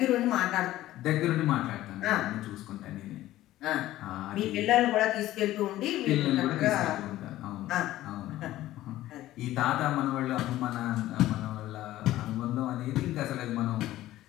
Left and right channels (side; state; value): right; quieter; 15.0 dB